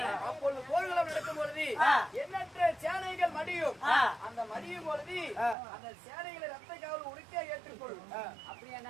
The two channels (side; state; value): left; drops out; at 5.6 s